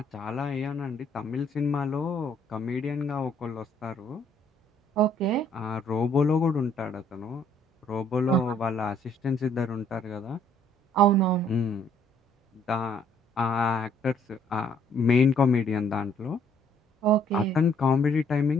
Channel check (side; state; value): both; normal; correlation 0.64